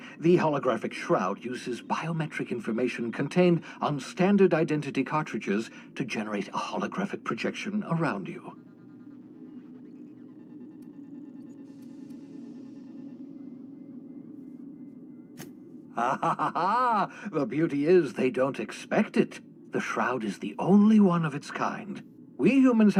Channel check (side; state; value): both; identical; correlation 1.00